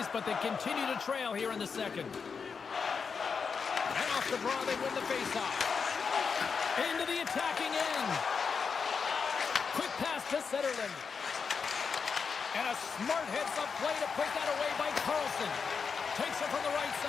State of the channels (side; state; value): right; quieter; 5.7 dB